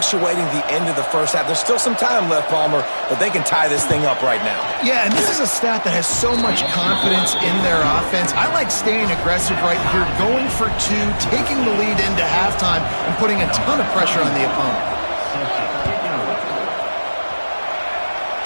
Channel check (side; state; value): both; inverted; correlation -1.00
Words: the end of the first half. There's still some time left, Palmer, but they can tie this thing up right now. Yeah, and this is a staff that has so much confidence in their offense. I like staying aggressive right here, going for two, taking the lead into halftime, and putting a ton of pressure on the opponent.